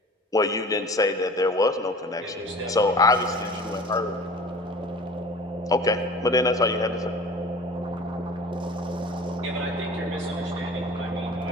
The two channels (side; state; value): both; normal; correlation 0.43